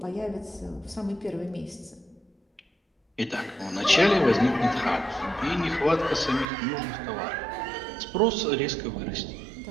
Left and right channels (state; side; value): drops out; left; at 6.5 s